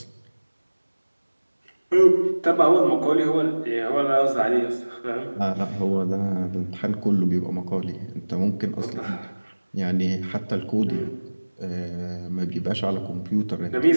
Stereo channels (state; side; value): inverted; both; correlation -1.00